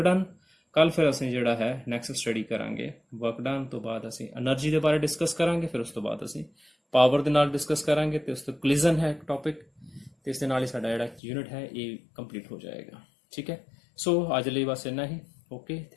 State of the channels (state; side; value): drops out; right; at 11.2 s